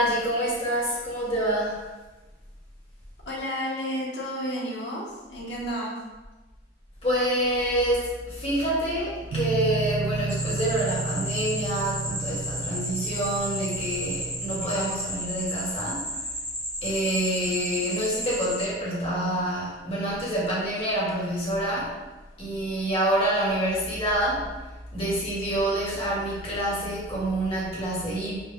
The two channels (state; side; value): normal; both; correlation 0.30